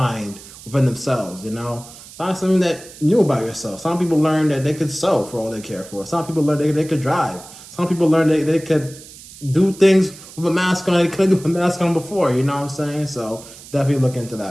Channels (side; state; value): right; noise; hiss, 18 dB below the sound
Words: within themselves, Find something that new about yourself. Some people learn that they could sew for all they care for. Some people learn they could drive. Some people learn they could do things with a mask on they couldn't do with a mask on before, you know what I'm saying? So definitely look into